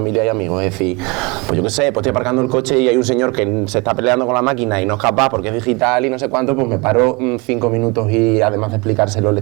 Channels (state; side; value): quieter; left; 27.2 dB